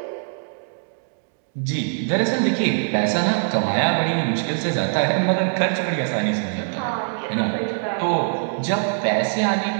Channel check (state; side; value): silent; left; digital silence